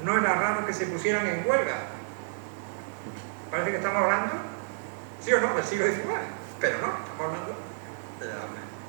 no era raro que se pusieran en huelga. Parece que estamos hablando, sí o no, del siglo XIX, pero no, estamos hablando de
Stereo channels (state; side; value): silent; left; digital silence